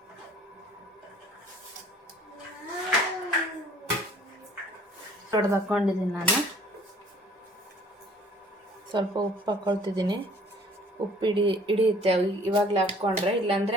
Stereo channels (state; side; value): normal; both; correlation 0.55